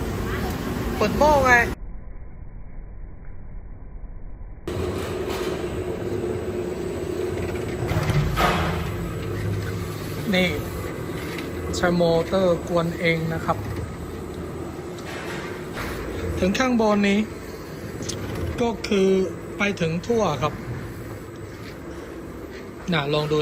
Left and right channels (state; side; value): identical; both; correlation 1.00